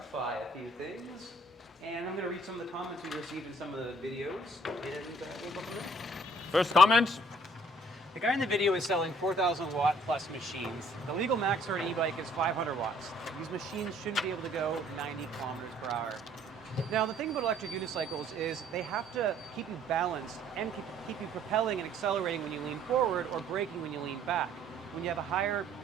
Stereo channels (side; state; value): both; normal; correlation 0.59